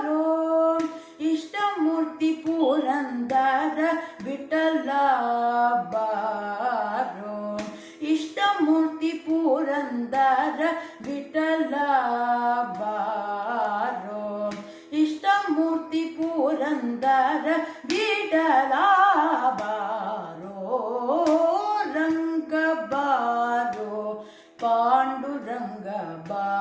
ಇಷ್ಟಮೂರ್ತಿ ಪುರಂದರ ವಿಠಲ ಬಾರೋ ಇಷ್ಟಮೂರ್ತಿ ಪುರಂದರ ವಿಠಲ ಬಾರೋ ಇಷ್ಟಮೂರ್ತಿ ಪುರಂದರ ವಿಠಲ ಬಾರೋ ರಂಗ ಬಾರೋ ಪಾಂಡುರಂಗ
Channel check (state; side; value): identical; both; correlation 1.00